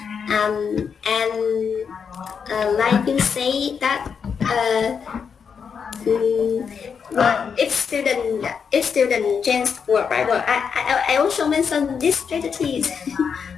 and like you say that if student change word by word, I also mentioned these strategies.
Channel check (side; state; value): right; quieter; 6.5 dB